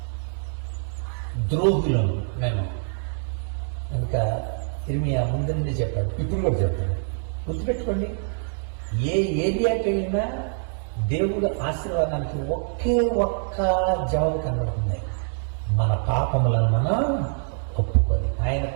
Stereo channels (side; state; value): left; silent; digital silence